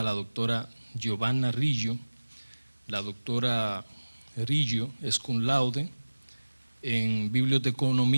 la doctora Giovanna Riggio. La doctora Riggio es cum laude en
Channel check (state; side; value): inverted; both; correlation -1.00